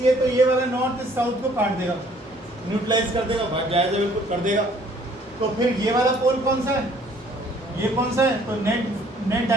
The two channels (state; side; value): normal; both; correlation 0.59